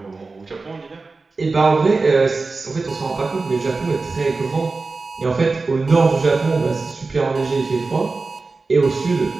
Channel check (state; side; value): quieter; left; 3.9 dB